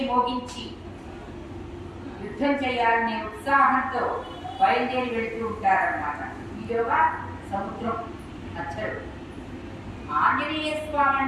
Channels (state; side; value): identical; both; correlation 1.00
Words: మోగించి యుద్ధం చేయాలనే ఉత్సాహంతో బయలుదేరి వెళుతూ ఉంటారన్నమాట. ఈలోగా సముద్రం మధ్యలో ఆంజనేయ స్వామి